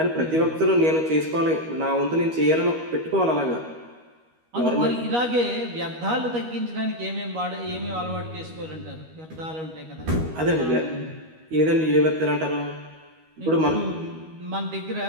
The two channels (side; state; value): left; late; 13 ms